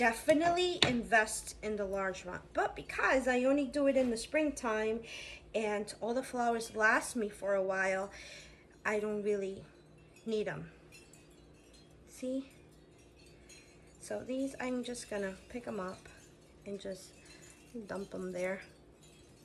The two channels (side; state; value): both; identical; correlation 1.00